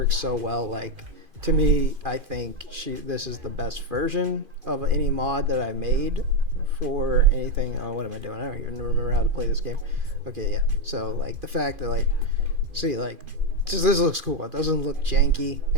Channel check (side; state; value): left; late; 2.4 ms